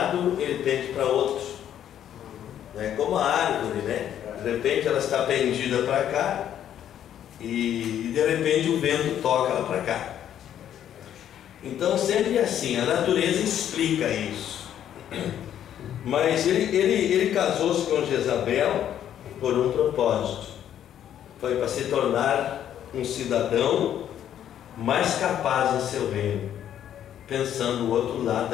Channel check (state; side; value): quieter; right; 10.4 dB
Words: ele pende para outro. É como a árvore, né? De repente ela está pendida para cá e de repente o vento toca ela para cá. Então sempre é assim, a natureza explica isso. Mas ele casou-se com Jezabel por um propósito. Foi para se tornar um cidadão mais capaz em seu reino, pensando o outro lado